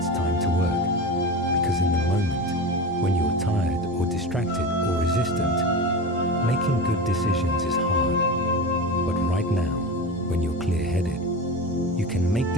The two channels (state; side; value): normal; both; correlation 0.26